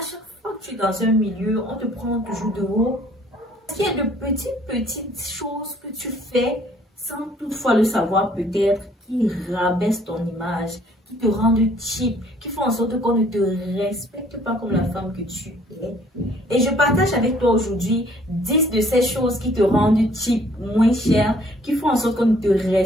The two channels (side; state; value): both; normal; correlation 0.60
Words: fois que tu es dans un milieu, on te prend toujours de haut, il y a de petites choses que tu fais sans toutefois le savoir peut-être, qui rabaissent ton image, qui te rendent cheap, qui font en sorte qu'on ne te respecte pas comme la femme que tu es. Et je partage avec toi aujourd'hui 10 de ces choses qui te rendent cheap, moins cher, qui font en sorte qu'on ne te